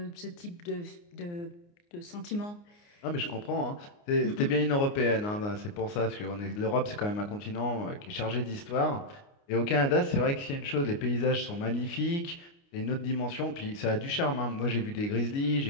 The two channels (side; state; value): right; late; 29 ms